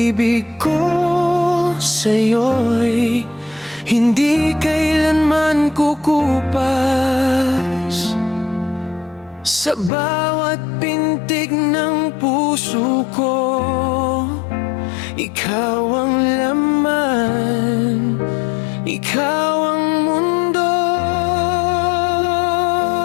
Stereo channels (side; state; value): right; drops out; at 9.9 s